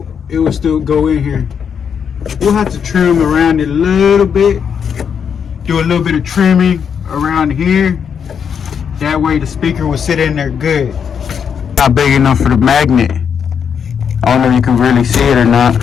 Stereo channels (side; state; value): right; quieter; 7.3 dB